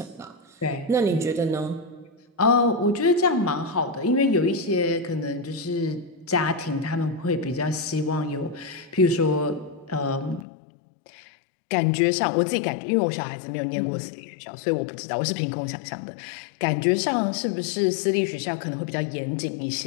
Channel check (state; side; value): drops out; right; at 10.5 s